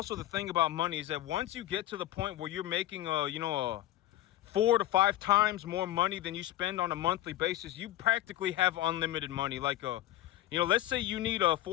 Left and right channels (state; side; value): quieter; right; 14.6 dB